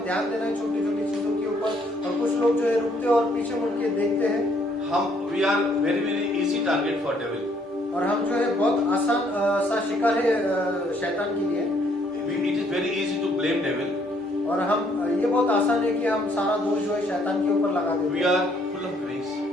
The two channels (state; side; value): normal; both; correlation 0.66